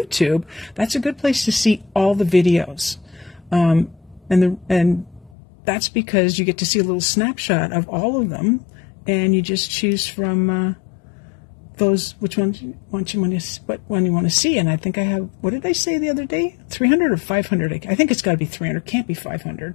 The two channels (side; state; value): right; drops out; at 5.3 s